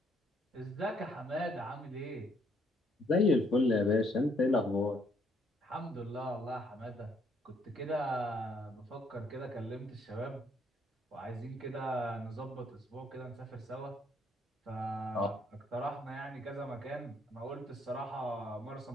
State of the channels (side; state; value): both; normal; correlation 0.69